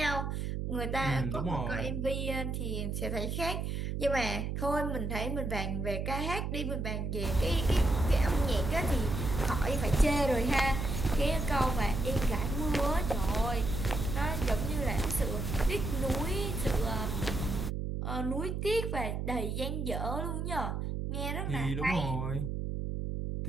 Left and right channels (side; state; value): right; noise; hum, 2 dB below the sound